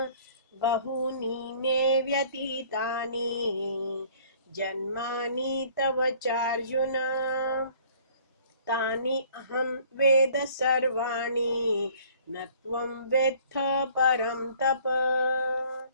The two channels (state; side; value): inverted; both; correlation -0.55